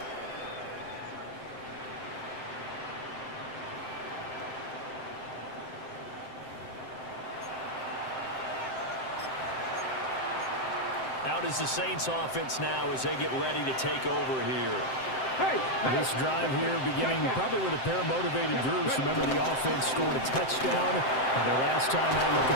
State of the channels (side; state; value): right; late; 7.7 ms